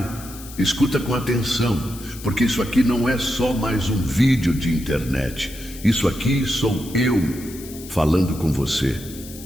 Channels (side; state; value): left; noise; hiss, 16 dB below the sound